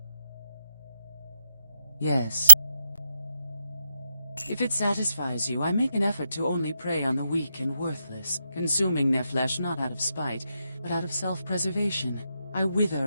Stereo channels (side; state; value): both; inverted; correlation -0.86